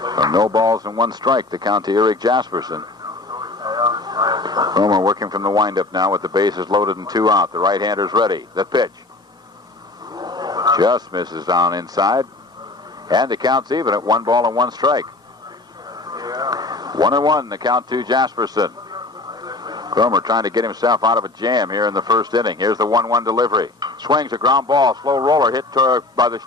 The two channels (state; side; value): quieter; right; 3.2 dB